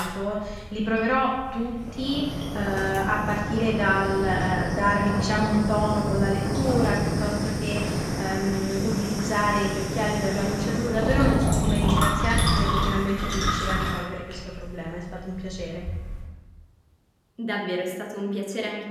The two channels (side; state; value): both; identical; correlation 1.00